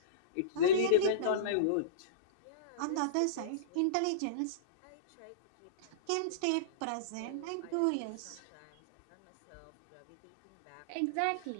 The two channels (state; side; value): different; both; correlation -0.04